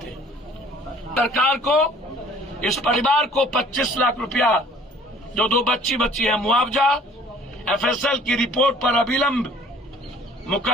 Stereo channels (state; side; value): normal; both; correlation 0.53